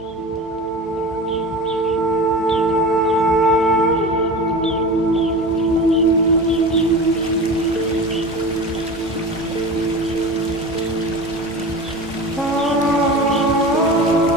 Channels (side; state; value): both; normal; correlation 0.31